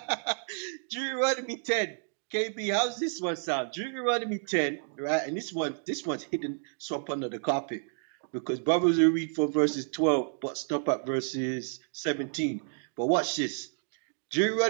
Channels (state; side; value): silent; left; digital silence